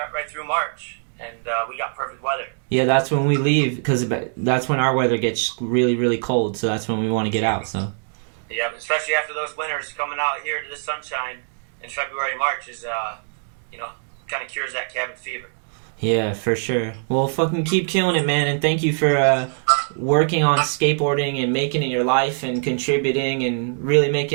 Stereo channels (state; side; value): silent; left; digital silence